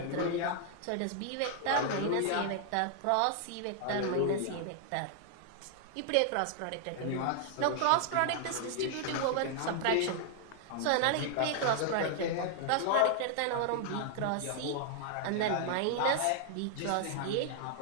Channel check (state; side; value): different; both; correlation 0.00